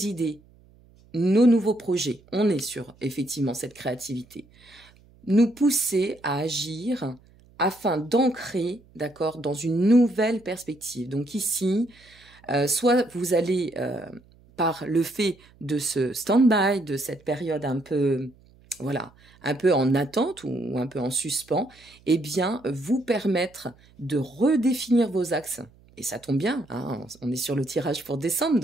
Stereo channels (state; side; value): noise; right; hum, 28 dB below the sound